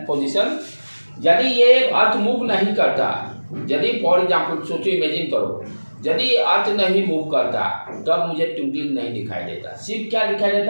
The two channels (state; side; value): inverted; both; correlation -1.00